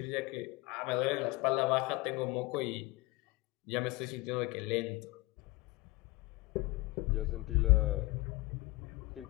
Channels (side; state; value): right; quieter; 22.7 dB